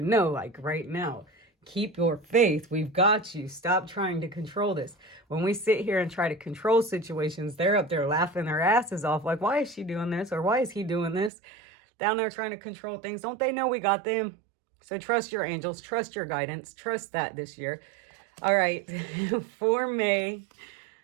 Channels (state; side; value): drops out; left; at 11.3 s